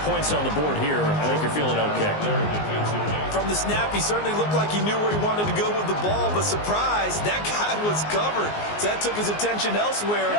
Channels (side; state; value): right; late; 19 ms